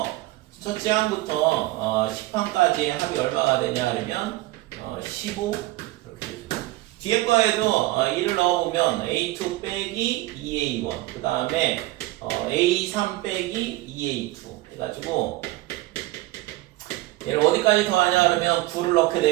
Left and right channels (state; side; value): quieter; left; 18.4 dB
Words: 첫째 항부터 10항까지의 합이 얼마가 되냐 하면 15 이렇게 되죠. 뒤에 거에도 1을 넣어보면 A2 빼기 2A1 그 다음에 A3 빼기 2A2 해가지고 얘를 어디까지 더하냐 그러면 9를 넣게